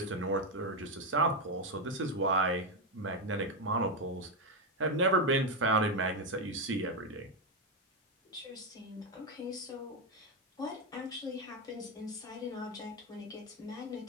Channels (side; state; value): both; normal; correlation 0.07